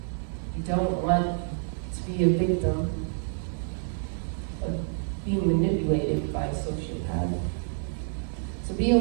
don't want to be a victim of being manipulated by a sociopath. So be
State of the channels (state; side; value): silent; left; 57 dB below the other